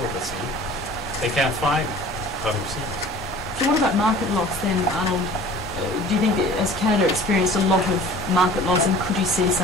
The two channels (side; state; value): both; normal; correlation 0.45